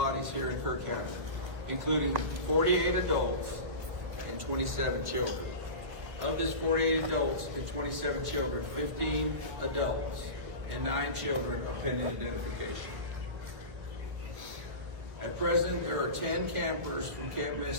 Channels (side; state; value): left; late; 1.5 ms